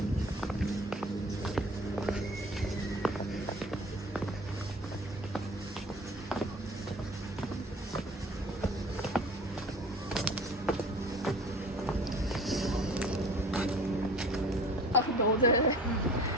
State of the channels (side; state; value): both; normal; correlation 0.45